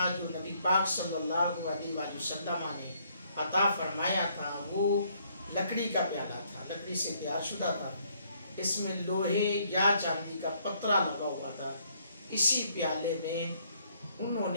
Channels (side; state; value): both; inverted; correlation -0.68